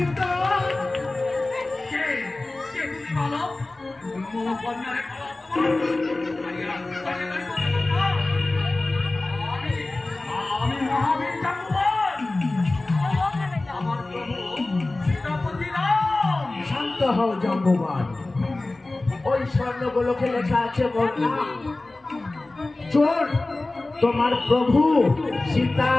আমি মহাবীর শান্ত হও জাম্বুবান। ওই স্বর্ণগোলকে লেখা আছে চোর তোমার প্রভু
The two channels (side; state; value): right; quieter; 3.0 dB